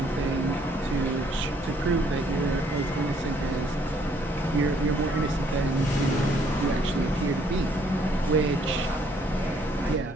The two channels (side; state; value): both; normal; correlation 0.65